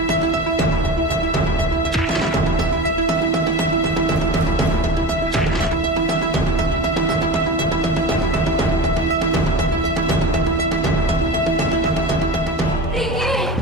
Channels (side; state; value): both; normal; correlation 0.31